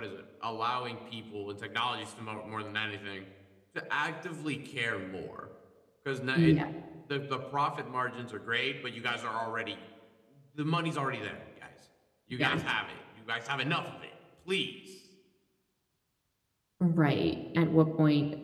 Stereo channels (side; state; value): both; identical; correlation 1.00